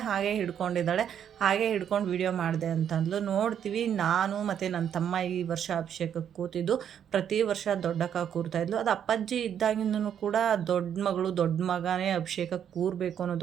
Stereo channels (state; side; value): quieter; left; 9.0 dB